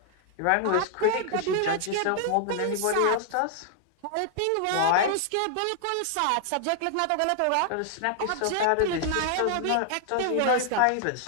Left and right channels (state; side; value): different; both; correlation 0.00